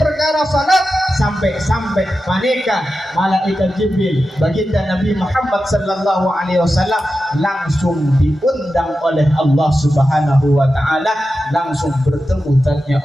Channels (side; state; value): both; normal; correlation 0.92